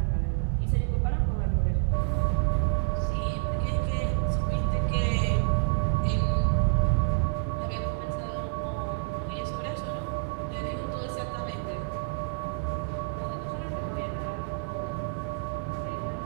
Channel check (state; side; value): silent; left; 56 dB below the other